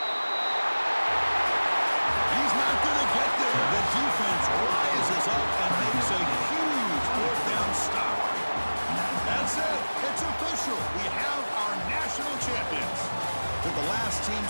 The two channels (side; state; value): both; inverted; correlation -1.00